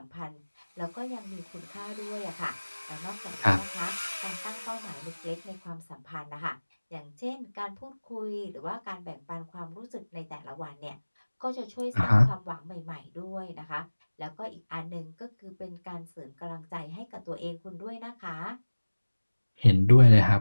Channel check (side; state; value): both; inverted; correlation -1.00